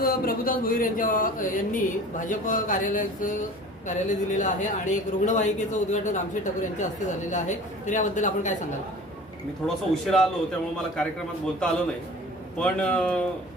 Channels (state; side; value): normal; both; correlation 0.42